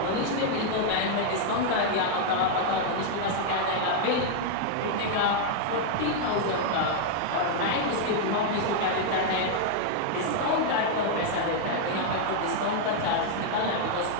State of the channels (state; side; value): different; both; correlation 0.00